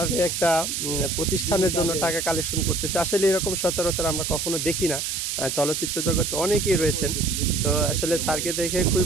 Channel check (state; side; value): noise; right; hiss, 2 dB below the sound